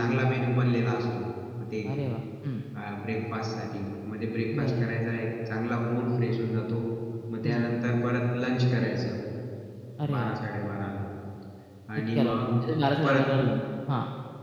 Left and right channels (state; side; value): identical; both; correlation 1.00